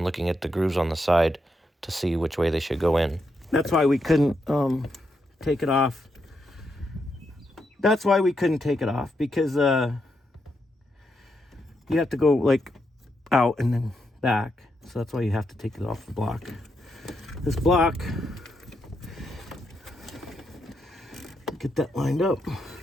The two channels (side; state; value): both; normal; correlation 0.82